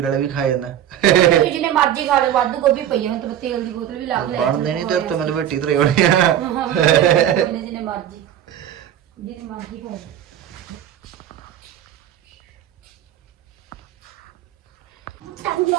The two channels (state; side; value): quieter; left; 10.8 dB